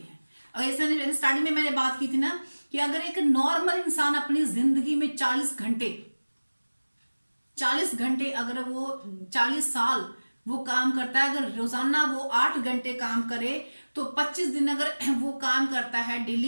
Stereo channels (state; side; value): inverted; both; correlation -1.00